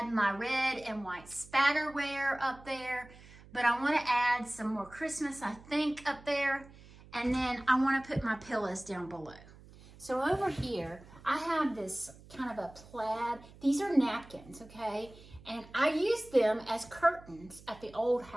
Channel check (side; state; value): right; noise; hum, 21 dB below the sound